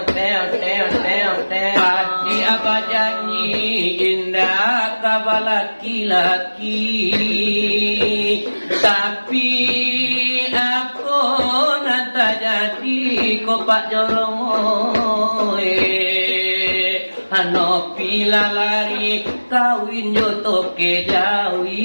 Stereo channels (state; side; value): inverted; both; correlation -1.00